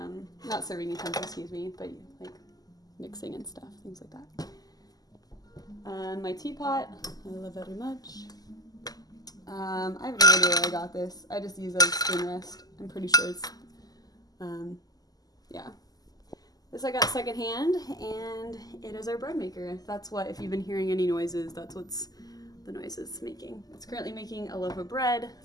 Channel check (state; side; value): late; right; 0.18 ms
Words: Not serving utensils, excuse me, but like mixing and stuff, things like that. My teapot, I love very much. I have no idea where I got this. I just use it as spoon rest. I'm pretty sure it's, yeah. This I got secondhand, and it is our bread maker. That's what, if you've been hearing any noises, that's what's the noise it's making. It's currently making a loaf of bread,